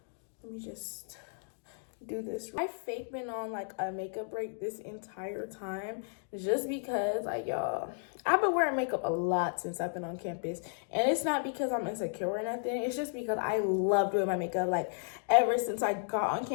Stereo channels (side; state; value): right; silent; digital silence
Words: let me just do this. I fake been on like a makeup break this entire time just because like y'all, I've been wearing makeup a lot since I've been on campus, and it's not because I'm insecure or nothing. It's just because I love doing my makeup. Like ever since I got on